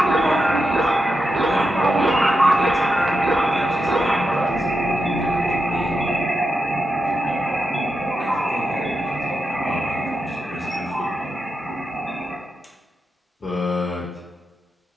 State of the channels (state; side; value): normal; both; correlation 0.87